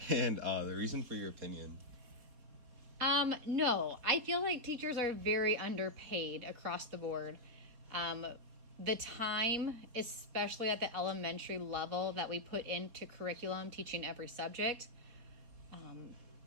And the reason for your opinion? No, I feel like teachers are very underpaid across the board. The time, especially at the elementary level, that we put into curriculum, teaching every subject,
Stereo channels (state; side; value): late; left; 4.0 ms